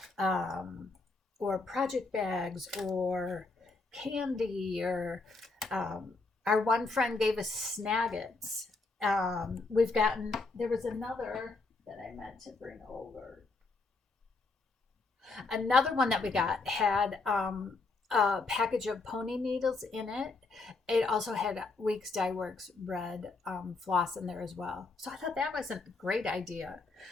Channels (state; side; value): quieter; right; 3.7 dB